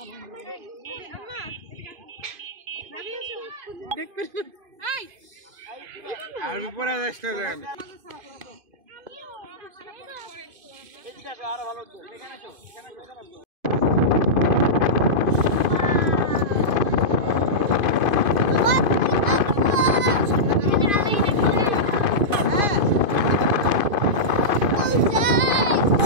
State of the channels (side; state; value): left; late; 2.5 ms